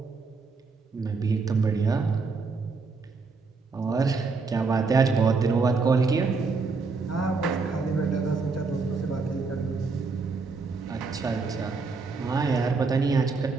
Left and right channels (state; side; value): quieter; left; 4.4 dB